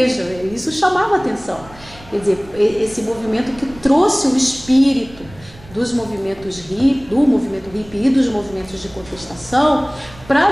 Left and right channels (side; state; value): right; noise; rumble, 21 dB below the sound